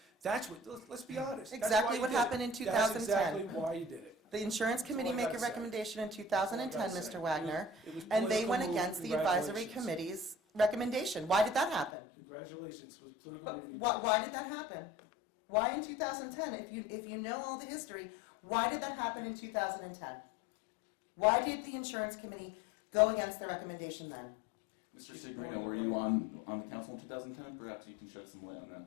that's what, let's be honest. that's Exactly why you what did it. happened in That's 2010. exactly why you did it. The insurance committee all I made a gotta say. recommendation in 2010, That's all I gotta Mr. say. Wagner, It was and they political went move. against the advisory Congratulations. committee's recommendation. Why did that happen? Congratulations, it was a political But movie. why did that happen? Why in 2010? If you know all the history, why did that happen in 2010? Why did the insurance committee go against the recommendation then? Mr. Signorino, were you on the council in 2010? Perhaps you can shed some light on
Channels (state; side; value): drops out; right; at 11.9 s